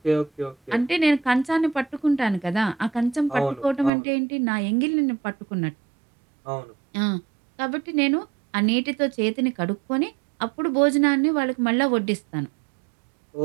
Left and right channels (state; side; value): drops out; left; at 3.9 s